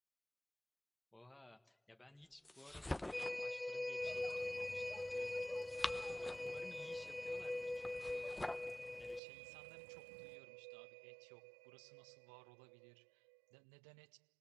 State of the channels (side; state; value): left; drops out; at 9.2 s